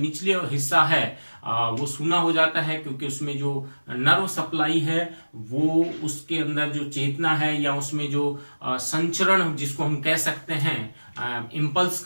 हिस्सा है वो सूना हो जाता है, क्योंकि उसमें जो नर्व सप्लाई है वो, उसके अंदर जो चेतना है या उसमें जो संचरण जिसको हम कह सकते हैं इम्पल्स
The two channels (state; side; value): inverted; both; correlation -1.00